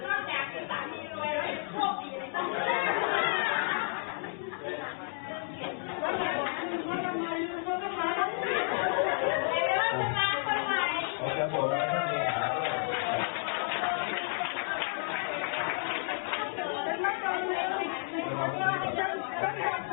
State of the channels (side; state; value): right; silent; 57 dB below the other